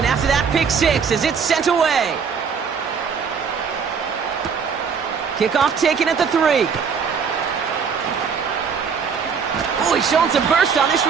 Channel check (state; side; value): quieter; left; 6.2 dB